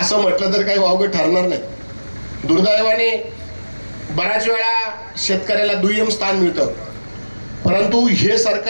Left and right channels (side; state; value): both; inverted; correlation -1.00